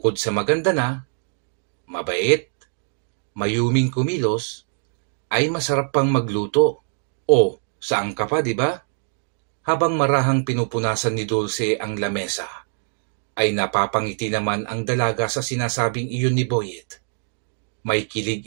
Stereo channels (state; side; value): silent; left; digital silence